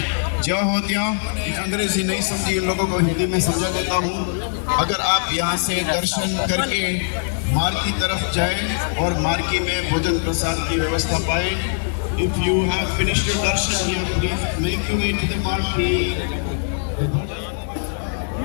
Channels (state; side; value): silent; right; digital silence